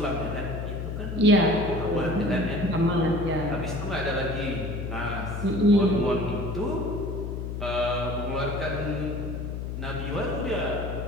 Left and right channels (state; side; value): noise; left; hum, 5 dB below the sound